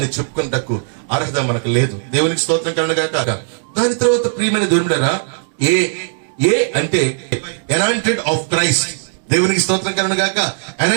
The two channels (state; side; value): silent; left; digital silence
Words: చెప్పుకుంటకు అర్హత మనకు లేదు. దేవునికి స్తోత్రం కలుగుగాక. దాని తర్వాత ప్రియమైన దేవుడా, ఏ అంటే అనాయింటెడ్ ఆఫ్ క్రైస్ట్. దేవునికి స్తోత్రం కలుగుగాక.